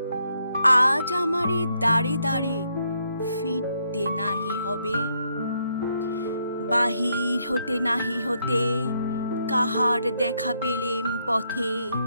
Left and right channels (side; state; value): both; inverted; correlation -0.76